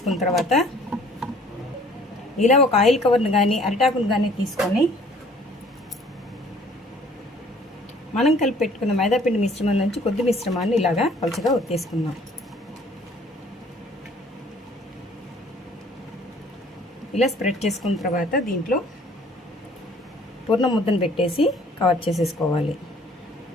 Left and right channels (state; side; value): normal; both; correlation 0.56